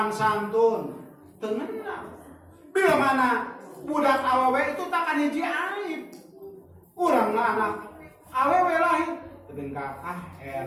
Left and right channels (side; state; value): both; identical; correlation 1.00